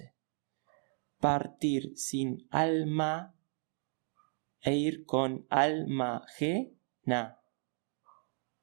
Partir sin alma e ir con alma ajena.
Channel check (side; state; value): left; silent; 54 dB below the other